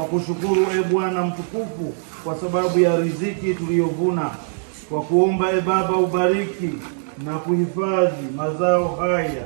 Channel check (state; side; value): silent; left; digital silence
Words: kushukuru Bwana mtukufu kwa sababu ya riziki tuliyovuna. Kwa kuomba Baba ubariki na kuhifadhi mazao haya